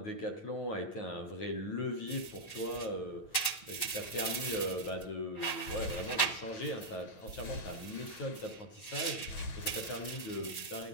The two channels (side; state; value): right; late; 9.1 ms